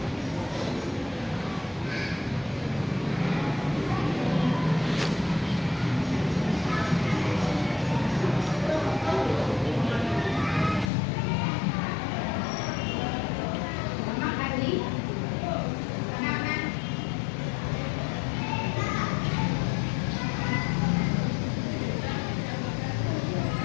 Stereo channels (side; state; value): right; drops out; at 10.9 s